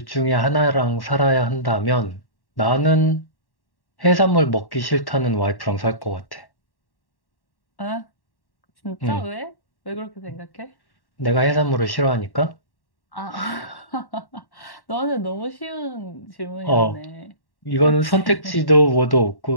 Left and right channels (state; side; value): late; right; 1.1 ms